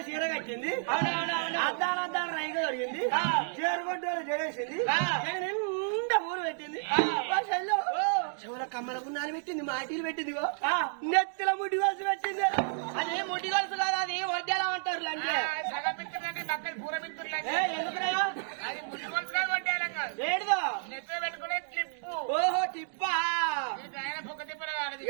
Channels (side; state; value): left; silent; digital silence